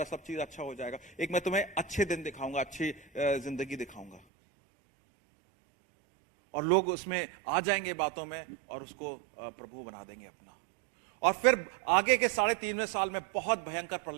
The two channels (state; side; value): drops out; left; at 4.2 s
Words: सब चीज अच्छा हो जाएगा, एक मैं तुम्हें अच्छे दिन दिखाऊंगा, अच्छी जिंदगी दिखाऊंगा। और लोग उसमें आ जाएंगे बातों में और उसको प्रभु बना देंगे अपना। और फिर आगे के 3.5वें साल में बहुत भयंकर